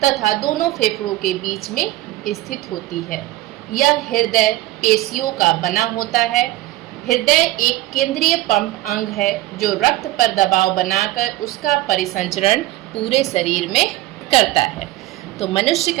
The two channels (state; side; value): quieter; left; 17.1 dB